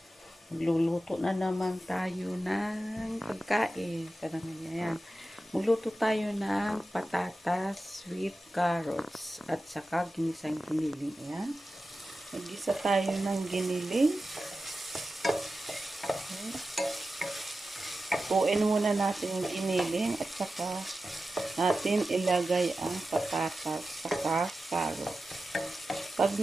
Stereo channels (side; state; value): both; normal; correlation 0.93